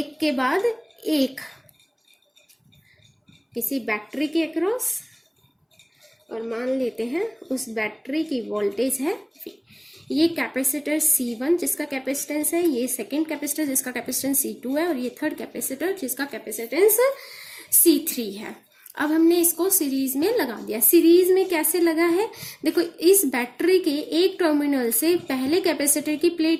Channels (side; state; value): both; identical; correlation 1.00